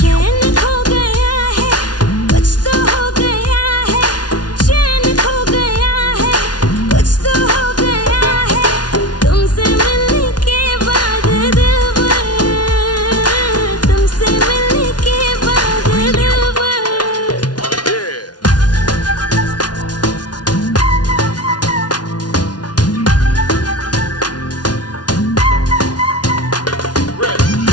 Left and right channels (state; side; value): late; right; 0.69 ms